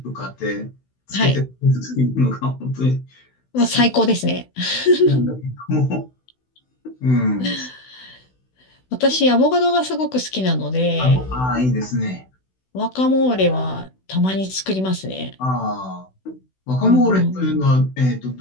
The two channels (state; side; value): late; right; 16 ms